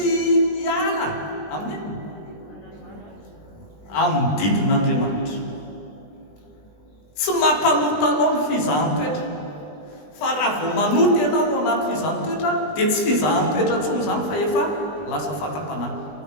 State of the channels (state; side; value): late; right; 20 ms